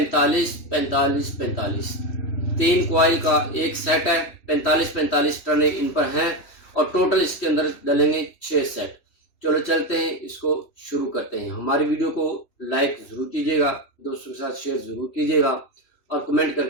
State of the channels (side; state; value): right; late; 3.1 ms